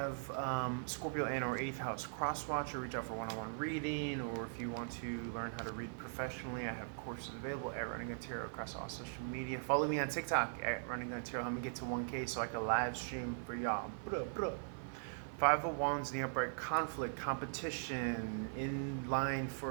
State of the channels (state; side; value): silent; left; 51 dB below the other